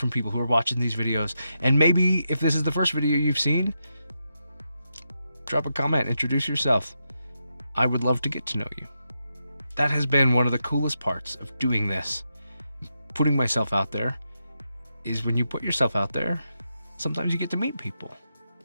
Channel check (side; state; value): both; inverted; correlation -0.85